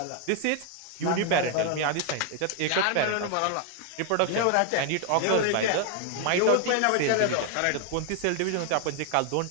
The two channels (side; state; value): both; different; correlation 0.00